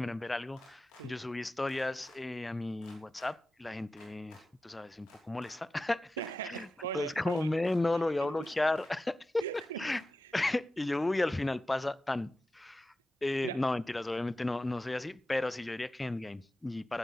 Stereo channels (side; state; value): both; normal; correlation 0.94